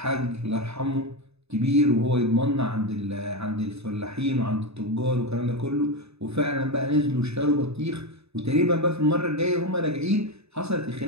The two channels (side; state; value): left; late; 0.79 ms